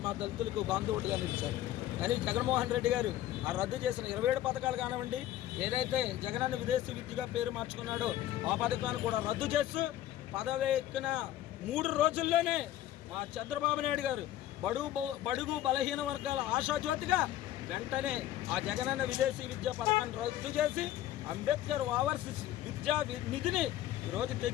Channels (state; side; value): quieter; right; 13.3 dB